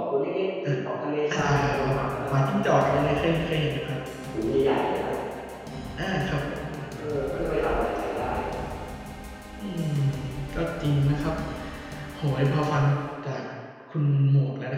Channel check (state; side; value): identical; both; correlation 1.00